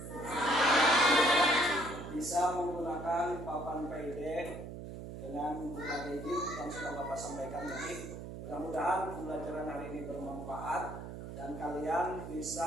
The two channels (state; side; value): noise; right; hum, 9 dB below the sound